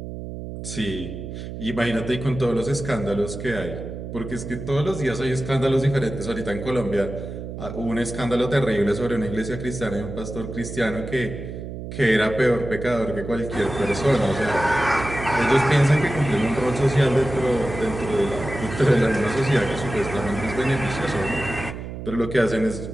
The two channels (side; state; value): right; noise; hum, 9 dB below the sound